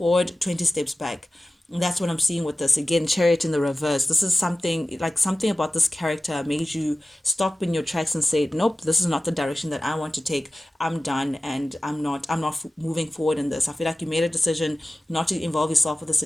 20 steps back. And that's what I'm seeing with this. Again, chariot in the reverse. This is something like something about this character made you stop in your tracks and say, nope, this is not the direction that I want to take. I'm done, and I'm not moving forward in this. I feel like you made a decision not to involve yourself with this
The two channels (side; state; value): both; normal; correlation 0.95